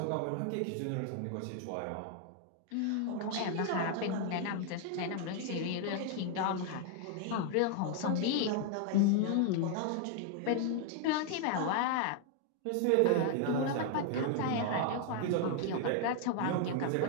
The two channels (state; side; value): different; both; correlation 0.00